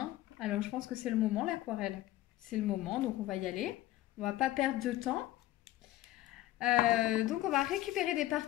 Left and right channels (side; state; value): right; quieter; 15.4 dB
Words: Alors, je pense que c'est le moment, l'aquarelle. C'est le moment, donc on va y aller. On va pas perdre de temps. Donc, on va récupérer des